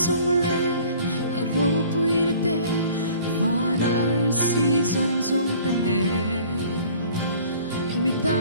lê rô bùi tê và nở si rong rong tên lê mi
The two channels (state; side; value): inverted; both; correlation -0.50